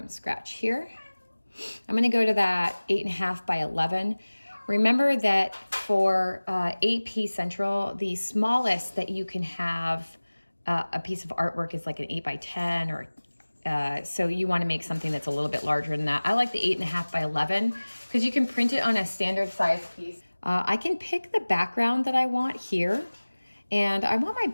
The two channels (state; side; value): inverted; both; correlation -1.00